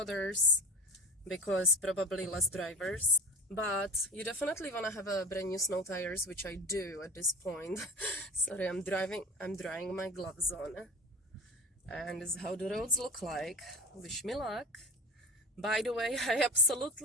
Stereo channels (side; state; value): both; normal; correlation 0.35